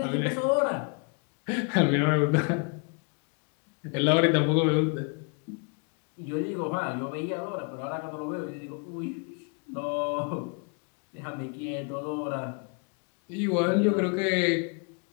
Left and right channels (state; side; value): quieter; right; 37.2 dB